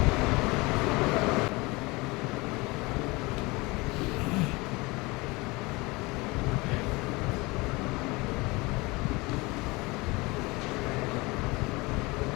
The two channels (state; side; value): quieter; right; 24.1 dB